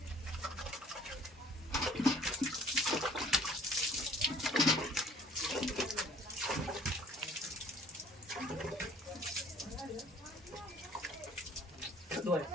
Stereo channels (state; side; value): normal; both; correlation 0.54